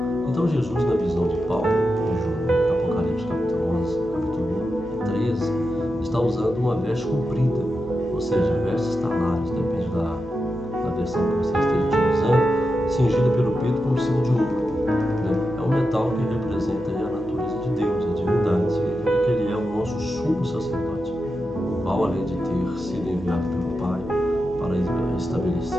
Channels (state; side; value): normal; both; correlation 0.89